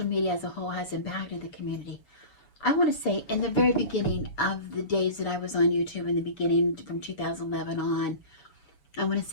media as a whole has impacted the community? I want to say in the very beginning of the days that I was on YouTube, in the beginning from 2011 on, I want to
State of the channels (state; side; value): late; right; 7.1 ms